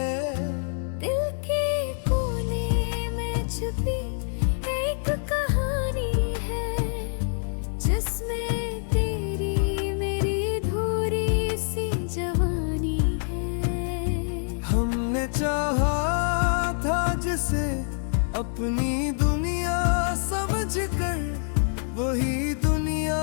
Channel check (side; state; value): right; silent; 61 dB below the other